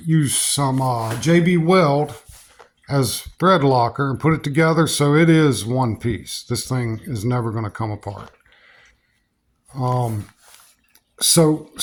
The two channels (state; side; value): identical; both; correlation 1.00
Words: used some JB Weld as thread locker and put it together so it is one piece. This thing is never going to come apart. So